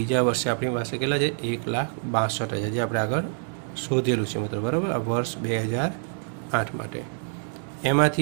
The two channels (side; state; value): left; silent; 55 dB below the other